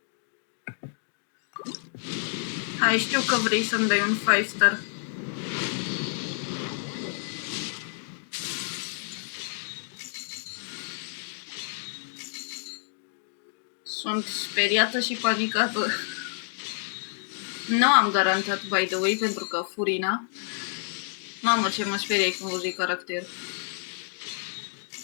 Hai, știu că vrei să-mi dai un 5 star. Sunt speriată și panicată. Nu am garantat, by the way, pentru că Furina. Mamă, ce mă speriai când văzui caracter.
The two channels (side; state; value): right; silent; digital silence